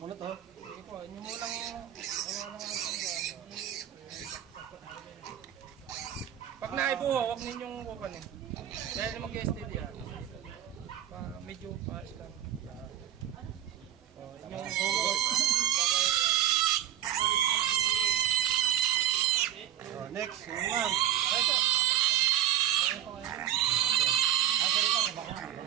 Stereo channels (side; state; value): left; quieter; 11.5 dB